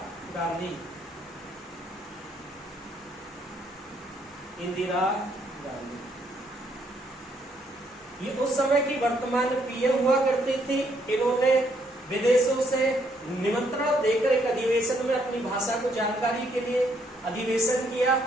गांधी, इंदिरा गांधी ये उस समय की वर्तमान पीएम हुआ करती थी। इन्होंने विदेशों से निमंत्रण देकर एक अधिवेशन में अपनी भाषा को जानकारी के लिए अधिवेशन किया।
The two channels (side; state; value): both; normal; correlation 0.71